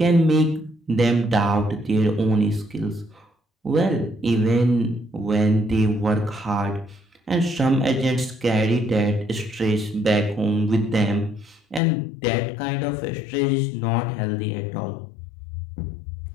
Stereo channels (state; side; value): drops out; right; at 11.8 s